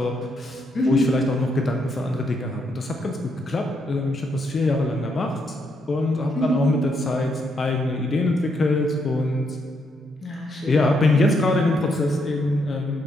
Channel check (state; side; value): normal; both; correlation 0.76